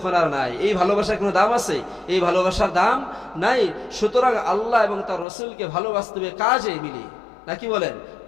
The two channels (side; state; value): right; drops out; at 5.2 s